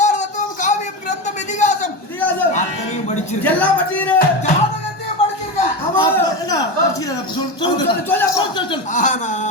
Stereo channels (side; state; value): right; late; 1.2 ms